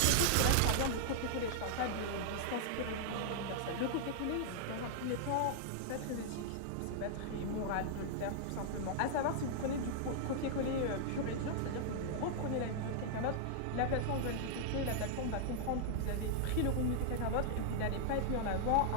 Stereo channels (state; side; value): different; both; correlation -0.01